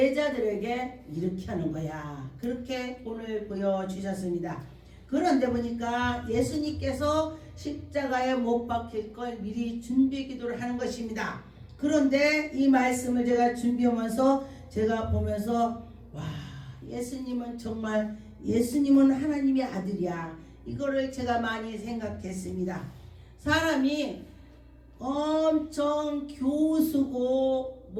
이렇게 하는 거야. 그렇게 오늘 보여주셨습니다. 그런데 보니까 예수님께서 십자가에 못 박힐 걸 미리 준비 기도를 하는 것입니다. 그런데 이 말씀을 제가 준비하면서 제가 보면서 와, 예수님은 정말 예수님은 하나님의 아들이야. 이거를 제가 많이 생각했습니다. 사람이 엄청 교수고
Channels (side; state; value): both; identical; correlation 1.00